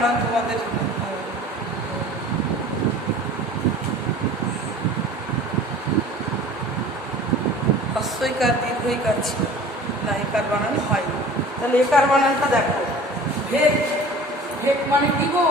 তোমাদের হস্যইকার দীর্ঘইকার ছিল না, একার বানান হয়। তাহলে একার বানানটা দেখো, ভেক ভেক মানে কি গো?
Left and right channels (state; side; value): normal; both; correlation 0.44